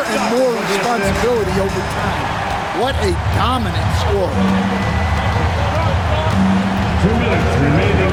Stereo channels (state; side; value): identical; both; correlation 1.00